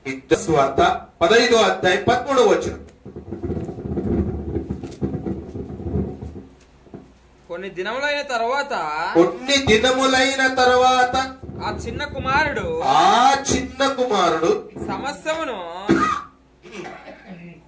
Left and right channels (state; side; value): identical; both; correlation 1.00